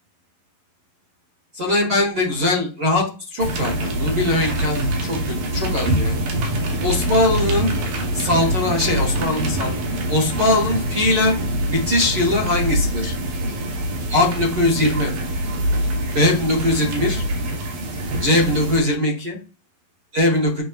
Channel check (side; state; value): left; late; 11 ms